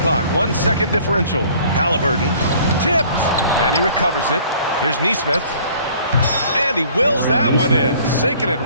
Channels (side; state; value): both; inverted; correlation -0.54